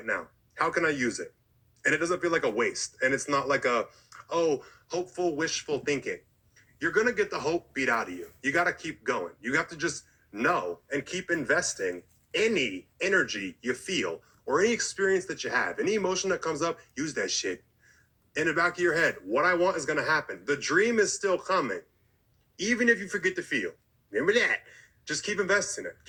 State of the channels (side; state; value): both; identical; correlation 1.00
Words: now? How can I use it? And it doesn't feel like a waste. And it's not like hopeful, wishful thinking. You're going to get the hope beat out of you. You got to keep going. You have to just know and keep investing any energy you feel or any experience that you have, any emotion that comes up, use that shit. In the back of your head, what I want is going to happen. The dream is still coming, even if you forget to feel. Remember that. Just keep investing it.